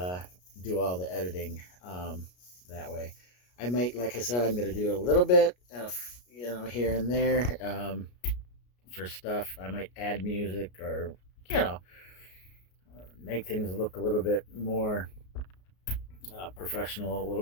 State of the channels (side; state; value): right; late; 33 ms